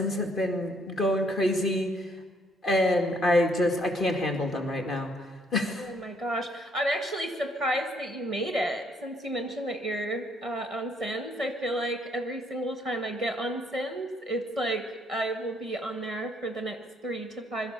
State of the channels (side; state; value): both; normal; correlation 0.67